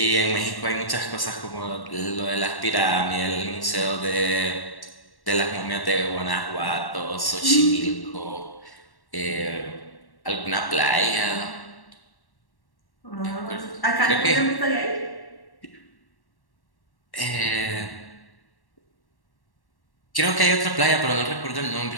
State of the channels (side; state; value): right; late; 1.1 ms